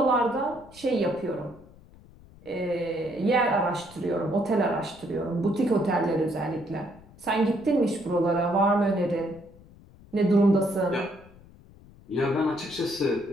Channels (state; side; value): noise; left; rumble, 23 dB below the sound